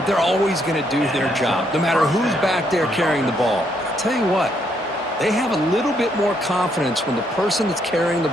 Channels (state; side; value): normal; both; correlation 0.73